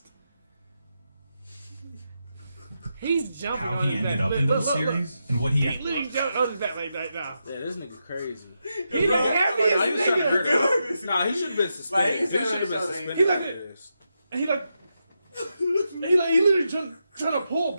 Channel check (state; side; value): inverted; both; correlation -0.86